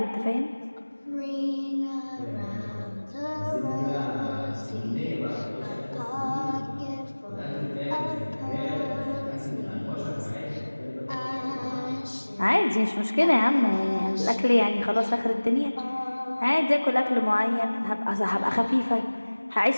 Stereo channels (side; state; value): both; inverted; correlation -1.00